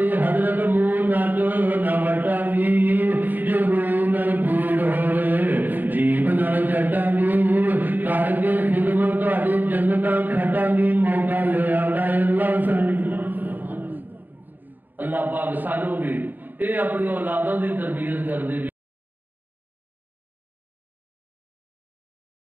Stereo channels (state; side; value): late; left; 0.088 ms